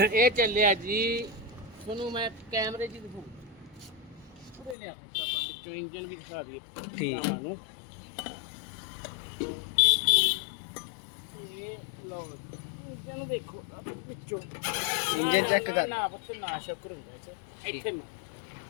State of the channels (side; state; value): right; drops out; at 4.8 s